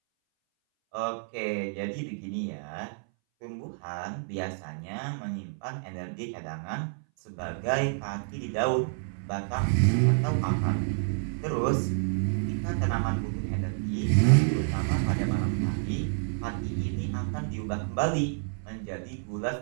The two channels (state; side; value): silent; left; 58 dB below the other